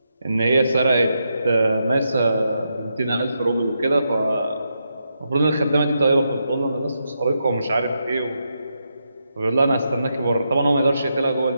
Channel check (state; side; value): inverted; both; correlation -0.83